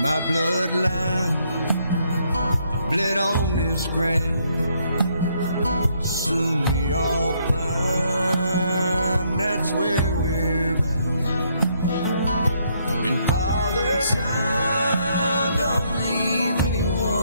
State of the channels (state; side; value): inverted; both; correlation -0.72